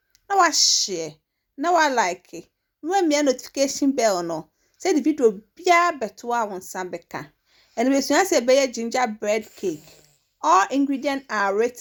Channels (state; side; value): identical; both; correlation 1.00